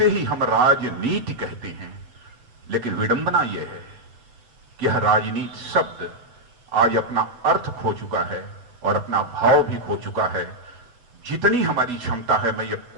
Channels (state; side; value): late; left; 8.1 ms